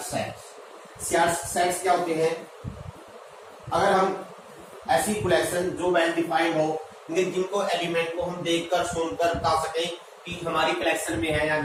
सेट्स क्या होते हैं? अगर हम ऐसी कलेक्शन जो वेल डिफाइंड हो, जिनको एलिमेंट को हम देखकर सुनकर बता सकें कि हमारी कलेक्शन में है या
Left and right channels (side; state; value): both; identical; correlation 1.00